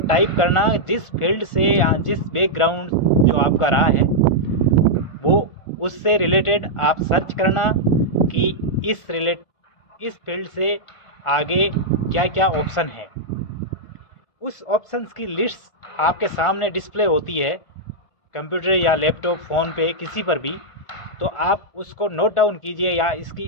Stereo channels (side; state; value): right; late; 1.4 ms